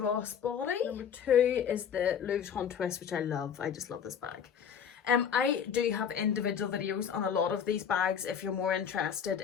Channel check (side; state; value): right; quieter; 7.8 dB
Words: Number 2 is the Louisvuitton twist, which I love. I just love this bag. I do have individual videos on a lot of these bags. If you're more interested